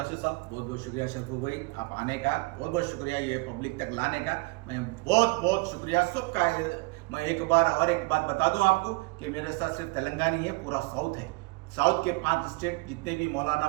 साहब। बहुत बहुत शुक्रिया शरफू भाई, आप आने का बहुत बहुत शुक्रिया, ये पब्लिक तक लाने का मैं बहुत बहुत शुक्रिया सबका। मैं एक बात बता दूं आपको कि मेरे साथ सिर्फ तेलंगाना ही है, पूरा साउथ है। साउथ के 5 स्टेट जितने भी मौलाना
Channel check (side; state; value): left; quieter; 26.2 dB